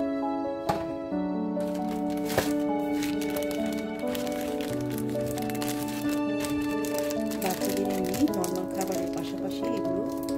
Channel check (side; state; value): both; identical; correlation 1.00